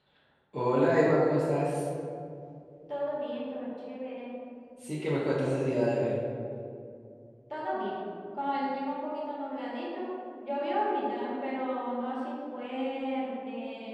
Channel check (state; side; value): identical; both; correlation 1.00